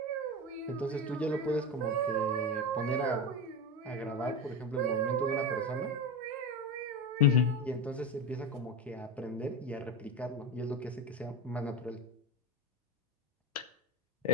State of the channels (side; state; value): both; normal; correlation 0.20